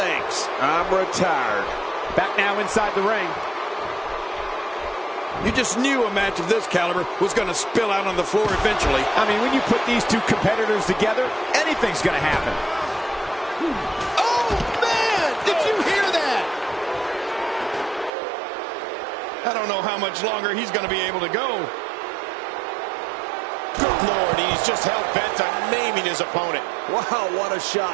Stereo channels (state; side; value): drops out; left; at 18.1 s